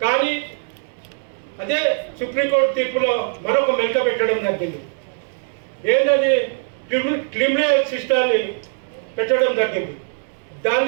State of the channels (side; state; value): left; silent; 65 dB below the other